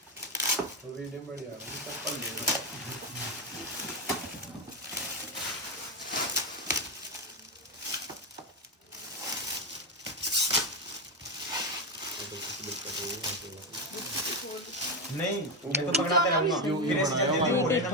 तो वीडियो बढ़िया है चप्पल ले नहीं मैं तो पकड़ाते रहूंगा फिर ऐसे जल्दी हो रहे ना तो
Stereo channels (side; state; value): both; normal; correlation 0.11